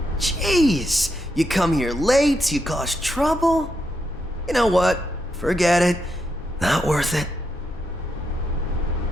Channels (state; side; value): normal; both; correlation 0.82